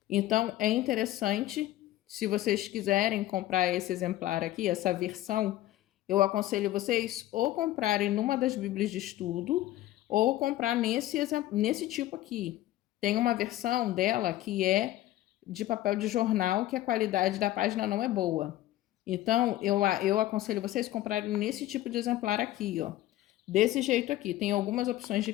Então, é interessante, se vocês quiserem comprar esse exemplar aqui, essa versão, eu aconselho vocês ou comprarem numa das bíblias de estudo ou comprar nesse tipo aqui. Tem uma versão dela que é de papel de jornal, que a qualidade da página não é boa. Então, eu aconselho vocês comprarem nesse tipo de exemplar aqui, ó. Desse jeito aqui. Tem algumas opções de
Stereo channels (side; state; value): right; quieter; 14.8 dB